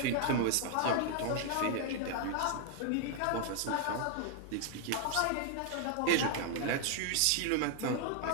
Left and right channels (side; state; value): both; different; correlation 0.00